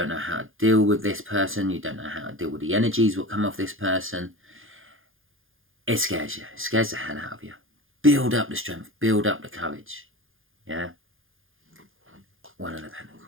know how to deal with this person. You don't know how to deal with the energies that come off this person. It scares you. It scares the hell out of you. Build up the strength. Build up the courage. Yeah? One of the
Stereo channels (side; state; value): left; late; 0.59 ms